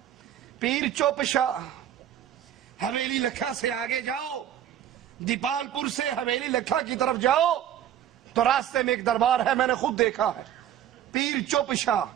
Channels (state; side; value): quieter; left; 10.6 dB